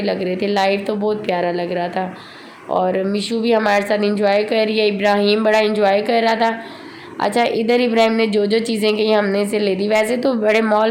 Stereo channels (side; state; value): both; identical; correlation 1.00